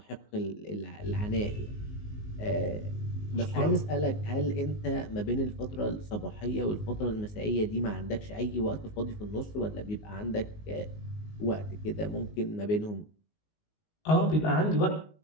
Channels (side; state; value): right; late; 19 ms